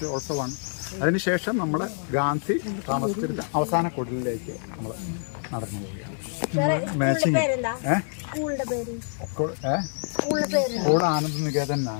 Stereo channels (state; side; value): silent; right; 61 dB below the other